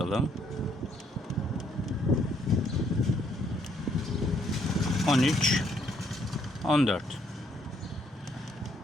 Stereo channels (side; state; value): both; normal; correlation 0.69